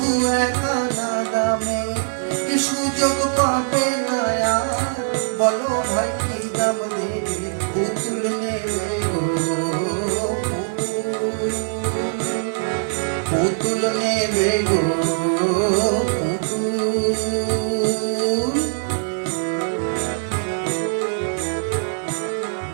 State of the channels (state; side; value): silent; left; digital silence